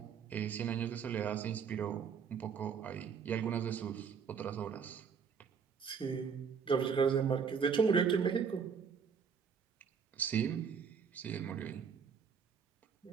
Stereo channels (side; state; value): left; quieter; 6.5 dB